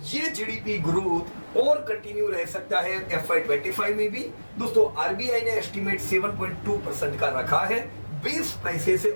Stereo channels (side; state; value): both; inverted; correlation -1.00